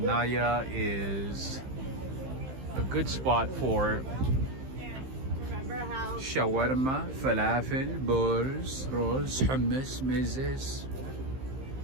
is a good spot for shawarma, falafel, bowls, rolls, hummus, mezes,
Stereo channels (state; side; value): late; left; 15 ms